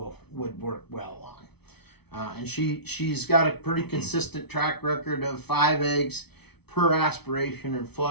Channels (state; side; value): late; right; 0.99 ms